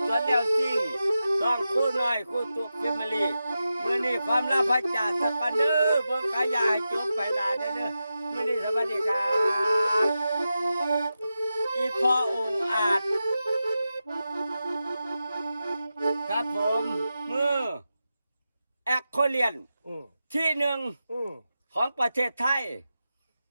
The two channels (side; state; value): both; inverted; correlation -0.91